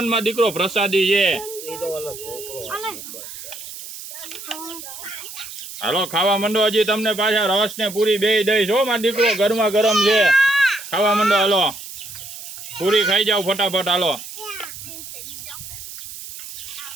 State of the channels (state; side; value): noise; right; hiss, 12 dB below the sound